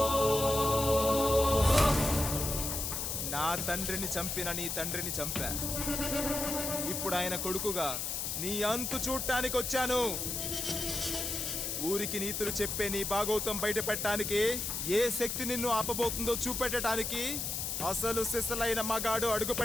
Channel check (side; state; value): left; noise; hiss, 2 dB below the sound